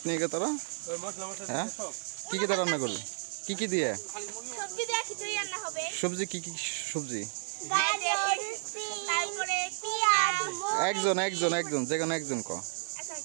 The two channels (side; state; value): left; silent; digital silence